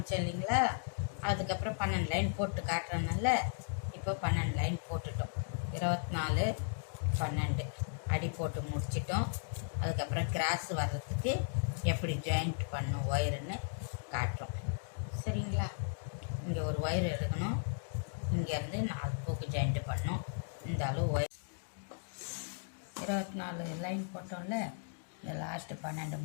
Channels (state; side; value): silent; right; digital silence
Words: இல்லைங்களா, அதுக்கப்புறம் 12 லைன் போட்டு காட்டுறதுனால இப்போ 12 லைன் போட்டுட்டோம். 24 12 அடி போட்டு முடிச்சிட்டோம். அதுக்கப்புறம் கிராஸ் வர்றதுக்கு எப்படி ஜாயிண்ட் பண்ணும் ஒயருன்னு காட்டுறோம். சரிங்களா, இங்கே ஒரு ஒயர் எடுக்கணும், இங்கேருந்து 4 பூக்கு ஜாயிண்ட் பண்ணோம். இந்த அளவு ஒயர் 24 லைன் போட்டோம்ல, இந்த லாஸ்ட்டு 12